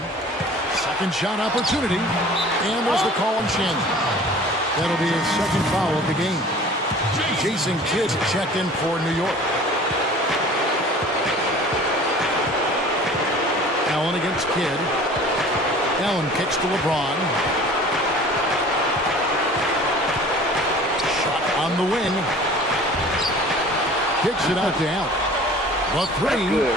Second shot opportunity. And there's the call on Shannon. That'll be his second foul of the game. Jason Kidd checked in for New York. Allen against Kidd. Allen kicks to LeBron. Shot on the wing. Kicks it out to Allen. The three.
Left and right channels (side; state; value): both; normal; correlation 0.45